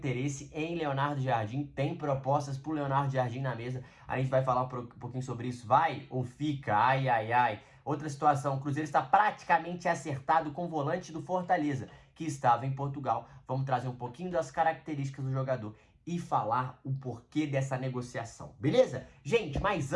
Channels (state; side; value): identical; both; correlation 1.00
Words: em Leonardo Jardim, tem propostas pro Leonardo Jardim na mesa. A gente vai falar um pouquinho sobre isso, vai ou fica, ai ai ai. Outra situação, o Cruzeiro está praticamente acertado com o volante do Fortaleza, que estava em Portugal. Vamos trazer um pouquinho das características do jogador e falar o porquê dessa negociação, beleza? Gente, mas